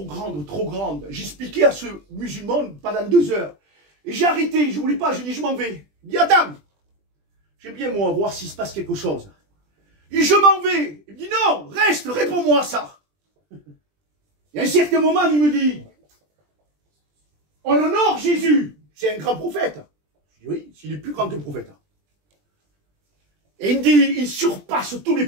grande, trop grande. J'expliquais à ce musulman pendant 2 heures. Et j'ai arrêté, je ne voulais pas, je dis je m'en vais. Il dit attends, j'aime bien moi voir s'il se passe quelque chose. Et je m'en vais. Il me dit non, reste, réponds-moi à ça. Et à un certain moment, il me dit on honore Jésus, c'est un grand prophète. Je dis oui, s'il est plus grand qu'un prophète. Et il me dit il surpasse tous les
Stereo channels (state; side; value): late; left; 20 ms